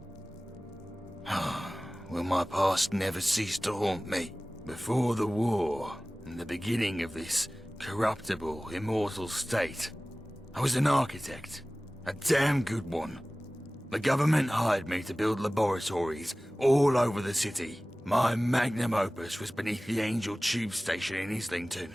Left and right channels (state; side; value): normal; both; correlation 0.98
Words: Will my past never cease to haunt me? Before the war, and the beginning of this corruptible, immortal state, I was an architect. A damn good one. The government hired me to build laboratories all over the city. My magnum opus was beneath the Angel Tube Station in Islington.